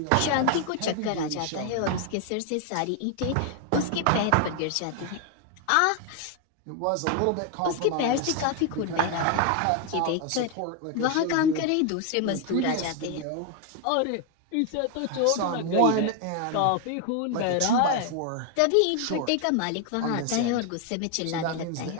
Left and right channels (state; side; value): different; both; correlation 0.01